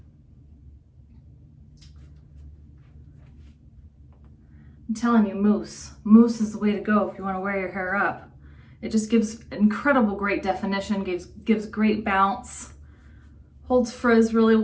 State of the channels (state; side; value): identical; both; correlation 1.00